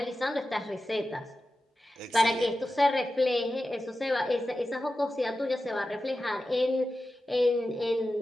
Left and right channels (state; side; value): normal; both; correlation 0.93